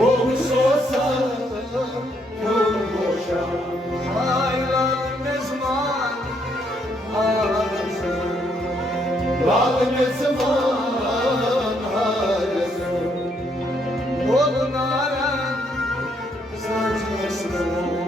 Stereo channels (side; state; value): both; normal; correlation 0.72